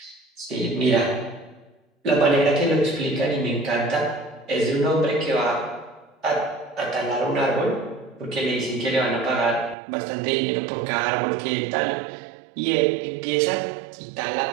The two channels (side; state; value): left; drops out; at 9.8 s